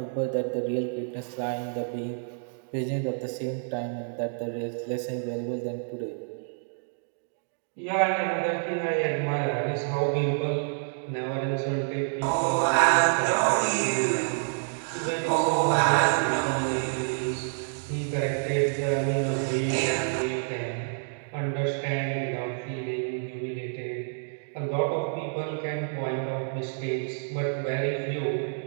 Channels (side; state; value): left; silent; digital silence